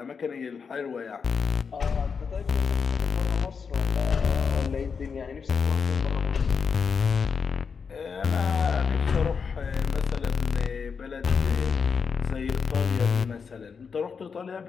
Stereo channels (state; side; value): quieter; right; 5.8 dB